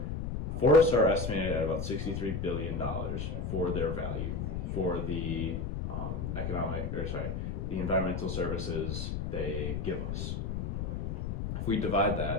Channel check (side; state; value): left; noise; rumble, 3 dB below the sound